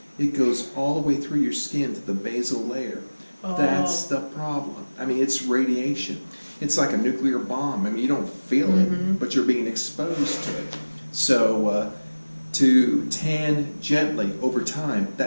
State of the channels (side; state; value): both; inverted; correlation -1.00